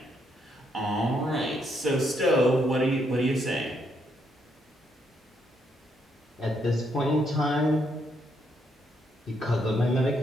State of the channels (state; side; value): normal; both; correlation 0.75